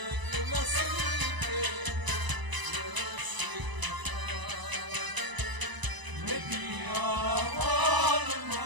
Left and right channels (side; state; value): left; late; 1.0 ms